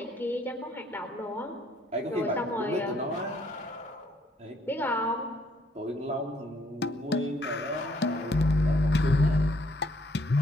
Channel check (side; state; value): both; normal; correlation 0.66